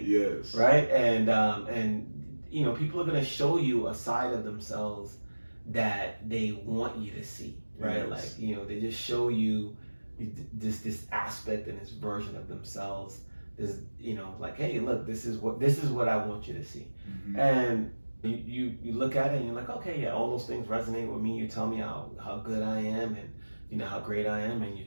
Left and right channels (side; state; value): both; inverted; correlation -1.00